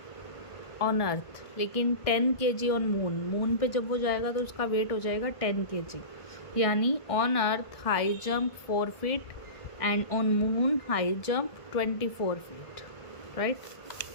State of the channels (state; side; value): late; right; 1.5 ms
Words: ऑन अर्थ, लेकिन 10 kg ऑन मून. मून पे जब वो जाएगा तो उसका वेट हो जाएगा 10 kg. यानी on earth high jump 4 feet and on moon high jump 24 feet, right.